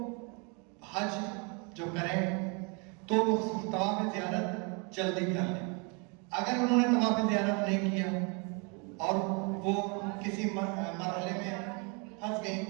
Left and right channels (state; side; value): quieter; left; 33.5 dB